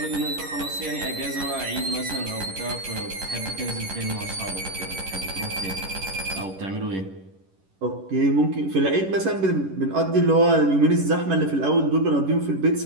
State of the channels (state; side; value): late; left; 11 ms